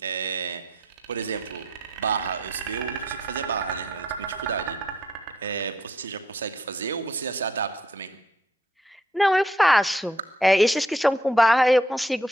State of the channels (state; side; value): normal; both; correlation 0.70